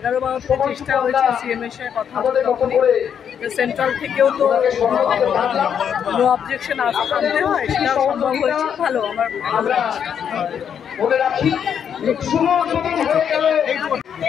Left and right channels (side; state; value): right; quieter; 8.1 dB